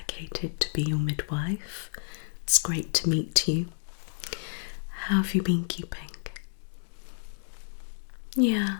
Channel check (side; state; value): right; silent; digital silence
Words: to be your midwife. It's great to meet you. How have you been keeping? Yeah.